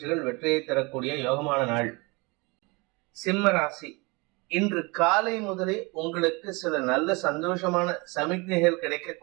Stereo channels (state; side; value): quieter; left; 26.9 dB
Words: வெற்றியை தரக்கூடிய யோகமான நாள். சிம்ம ராசி. இன்று காலை முதலே உங்களுக்கு சில நல்ல சந்தோஷமான சமிக்ஞைகள்